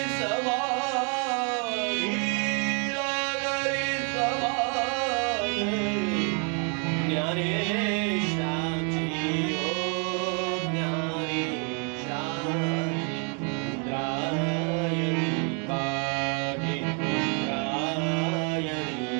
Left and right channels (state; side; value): quieter; left; 38.1 dB